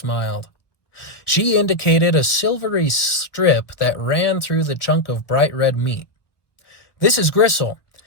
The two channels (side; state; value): right; late; 1.3 ms